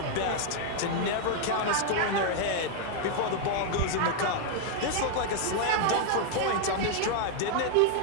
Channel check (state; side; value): different; both; correlation 0.00